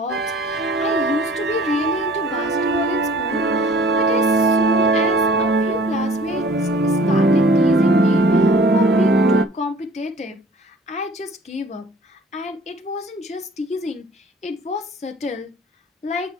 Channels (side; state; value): both; normal; correlation 0.51